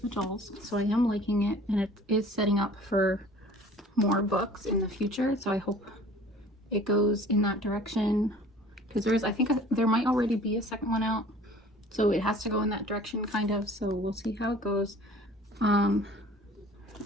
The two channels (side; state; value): both; normal; correlation 0.48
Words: the dolls. So I am liking it, and it is setting up for more books in the future. So I hope it goes in that direction, because there is, I think there might already be a second one out. So it has to go in that direction, kind of. So we'll see how it goes.